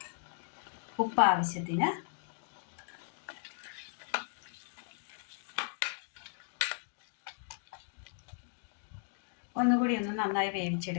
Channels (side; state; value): right; silent; 54 dB below the other